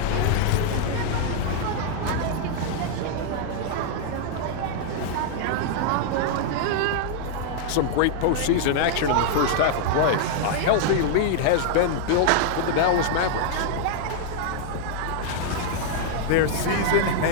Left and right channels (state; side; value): different; both; correlation 0.00